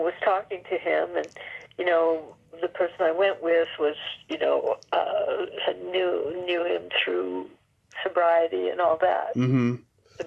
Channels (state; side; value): identical; both; correlation 1.00